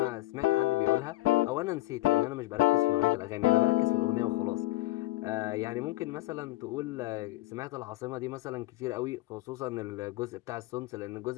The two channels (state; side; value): quieter; right; 18.5 dB